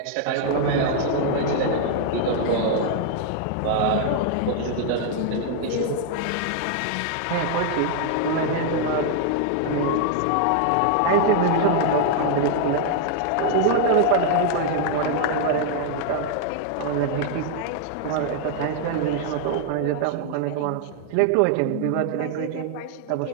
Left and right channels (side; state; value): both; different; correlation 0.00